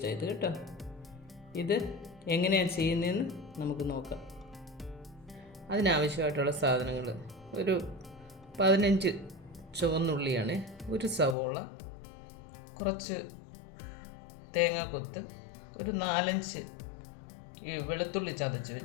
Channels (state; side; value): drops out; right; at 11.4 s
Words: കേട്ടോ. ഇത് എങ്ങനെയാണ് ചെയ്യുന്നതെന്ന് നമുക്ക് നോക്കാം. അതിനാവശ്യമായിട്ടുള്ള സാധനങ്ങൾ: ഒരു 15 ചുവന്നുള്ളിയാണ്, ഒരു സവോള, കുറച്ച് തേങ്ങാക്കൊത്ത്, ഒരു 4-5 വെളുത്തുള്ളി ചതച്ച്